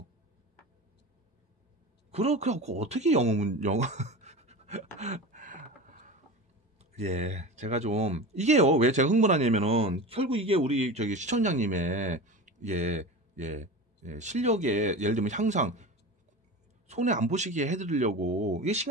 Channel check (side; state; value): both; normal; correlation 0.29